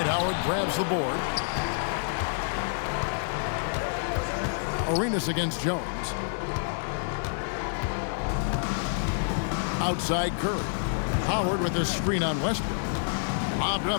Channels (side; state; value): right; silent; 59 dB below the other